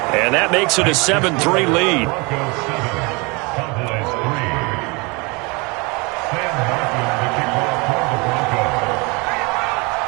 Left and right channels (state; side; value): quieter; left; 28.2 dB